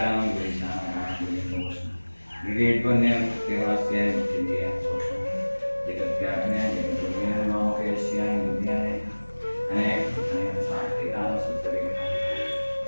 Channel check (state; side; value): inverted; both; correlation -1.00